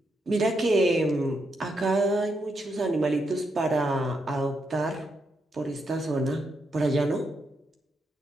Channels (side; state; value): both; normal; correlation 0.81